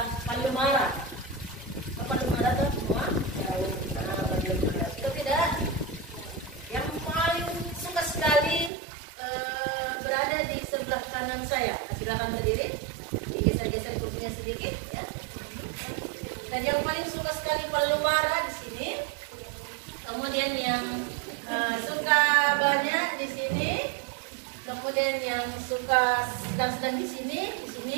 palu mara? Palu mara tuh semua? Tahu. Palu mara. Itu tidak? Yang paling suka sekali berada di sebelah saya. Silakan berdiri, digeser-geser kursinya sedikit ya. Dan yang paling suka sekali pelumara di sini, kemudian yang suka banyak di sini, kemudian yang suka sedang-sedang di sini,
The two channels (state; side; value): drops out; left; at 8.7 s